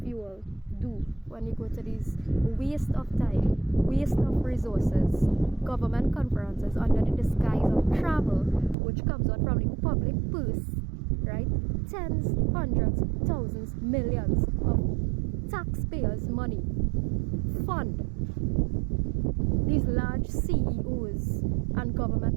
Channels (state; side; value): drops out; left; at 8.8 s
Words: you all do when you go to these waste of time, waste of resources, government conferences under the disguise of travel, which comes out from the public purse, right? Tens, hundreds, thousands, millions of taxpayers' money fund these large CEOs and